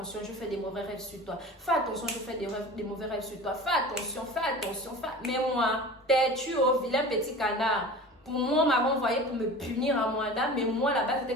je fais des mauvais rêves sur toi, fais attention, je fais des mauvais rêves sur toi, fais attention, mais moi têtu au vilain petit canard, pour moi on m'avait envoyé pour me punir à moi là, mais moi là-bas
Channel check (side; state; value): both; normal; correlation 0.37